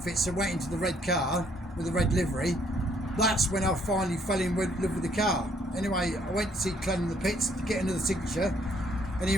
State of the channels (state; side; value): normal; both; correlation 0.66